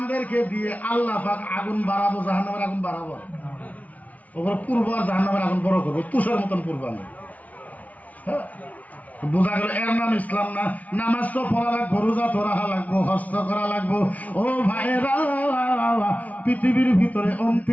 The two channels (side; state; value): right; late; 0.071 ms